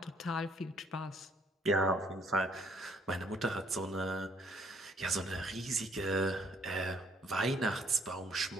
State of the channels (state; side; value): normal; both; correlation 0.63